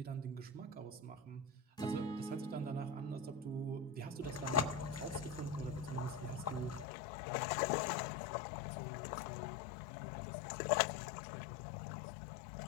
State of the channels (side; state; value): right; drops out; at 6.9 s